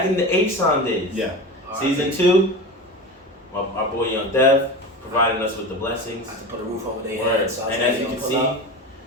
in the H-Son days. Yeah. Season 2, our boy Young Dev providing us with the blessings. I have to put a roof over their Word. head. So And as you can see,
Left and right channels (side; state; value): both; normal; correlation 0.28